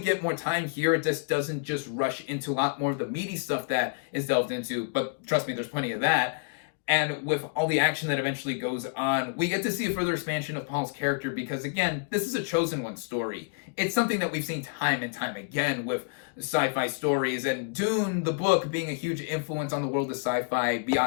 get more time here. It just doesn't just rush into a lot more of the meaty stuff that is delved into, but trust me, there's plenty of that. And with all the action that eventually goes on, we get to see a further expansion of Paul's character because, again, this is a chosen one story. It's something that we've seen time and time again with sci-fi stories, and Dune, the book, being a huge influence on the world of sci-fi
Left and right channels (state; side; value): quieter; right; 35.3 dB